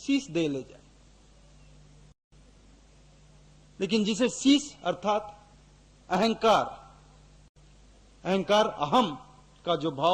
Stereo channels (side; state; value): both; identical; correlation 1.00